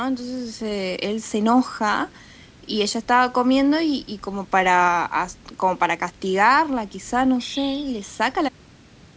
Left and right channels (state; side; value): identical; both; correlation 1.00